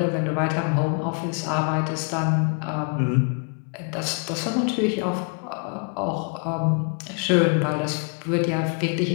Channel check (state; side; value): quieter; right; 39.0 dB